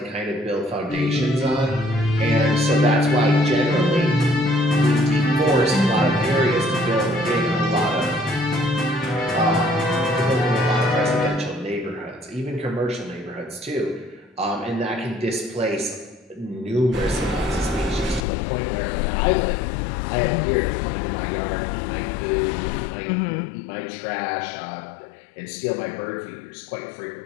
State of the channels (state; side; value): drops out; right; at 18.2 s